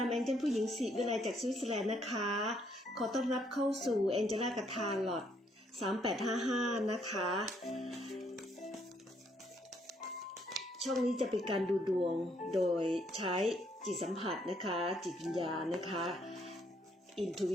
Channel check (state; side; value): normal; both; correlation 0.70